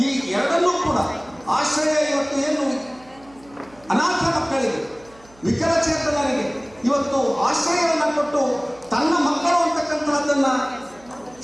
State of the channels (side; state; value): right; noise; hum, 27 dB below the sound